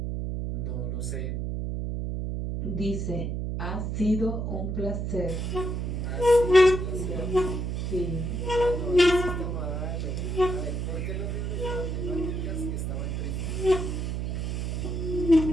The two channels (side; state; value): right; noise; hum, 2 dB below the sound